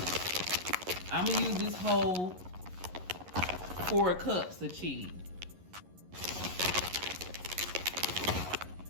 I'm gonna use this whole 4 cups of cheese.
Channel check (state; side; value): late; left; 11 ms